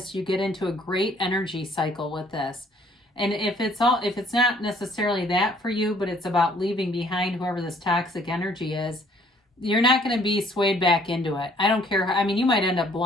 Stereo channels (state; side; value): normal; both; correlation 0.60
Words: you get into a great energy cycle with this. And if it's not necessarily that for you, but it's about leaving behind whoever this toxic energy is, you're not going to be swayed back into it. I don't care. I mean, you might end up